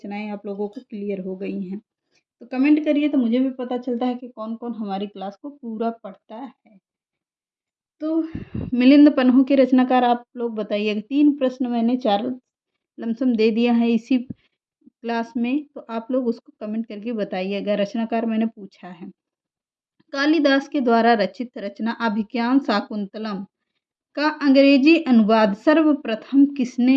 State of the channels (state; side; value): identical; both; correlation 1.00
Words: आप लोगों को क्लियर हो गई हैं। तो कमेंट करिए तो मुझे भी पता चलता है कि कौन कौन हमारी क्लास को पूरा पढ़ता है। तो मिलिंद पन्हू के रचनाकार आप लोग बताइएगा। 3 प्रश्न मैंने 4 लमसम दे दिया है इसी क्लास में, तो आप लोग उसको कमेंट करके बताइएगा। रचनाकार मैंने पूछा है। कालिदास के द्वारा रचित रचना अभिज्ञान शाकुंतलम का अंग्रेजी अनुवाद सर्वप्रथम